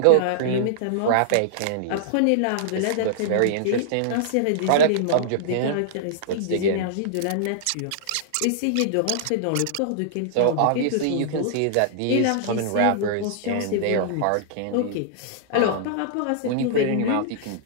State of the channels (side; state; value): both; different; correlation -0.02